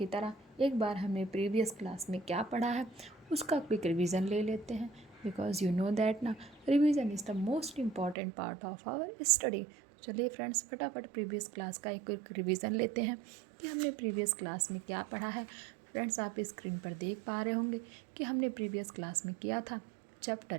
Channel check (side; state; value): left; drops out; at 8.2 s